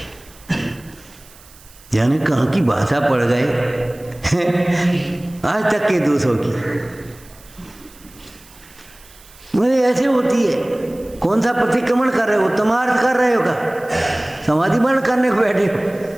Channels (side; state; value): right; noise; hiss, 24 dB below the sound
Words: यानी कहाँ की भाषा पड़ गए आज तक के दोषों की। मुझे ऐसे होती है। कौन सा प्रतिक्रमण कर रहे हो? तमार्थ कर रहे हो का? समाधि बंद करने को बैठे हो?